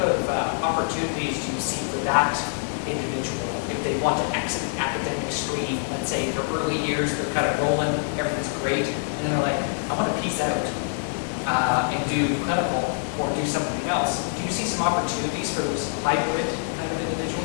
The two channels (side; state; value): right; silent; digital silence